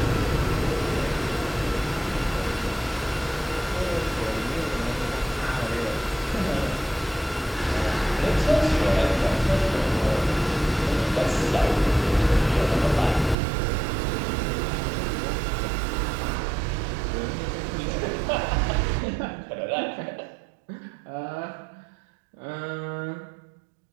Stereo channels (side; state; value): left; drops out; at 13.4 s